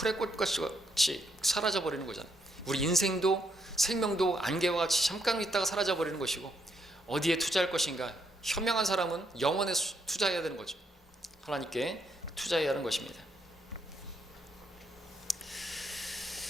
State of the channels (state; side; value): normal; both; correlation 0.75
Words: 꽃같이 사라져 버리는 거잖아요. 우리 인생도 생명도 안개와 같이 잠깐 있다가 사라져 버리는 것이고, 어디에 투자할 것인가, 현명한 사람은 영원에 투자해야 되는 거죠. 하나님께 투자해야 하는 것입니다.